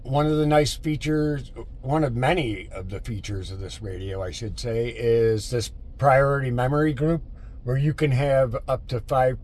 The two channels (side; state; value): both; identical; correlation 1.00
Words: One of the nice features, one of many of the features of this radio, I should say, is this priority memory group where you can have up to 5